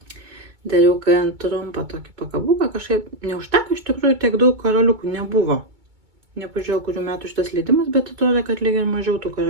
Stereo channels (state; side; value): late; left; 2.2 ms